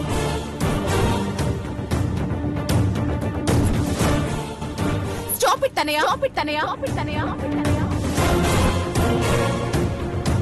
Stop it Tanaya, stop it Tanaya, stop it తనయ.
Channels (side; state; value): both; identical; correlation 1.00